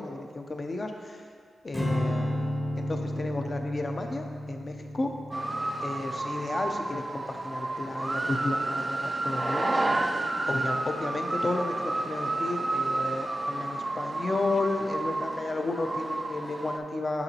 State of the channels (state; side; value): normal; both; correlation 0.92